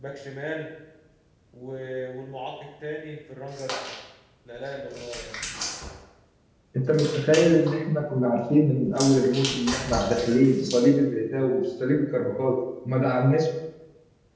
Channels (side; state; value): both; identical; correlation 1.00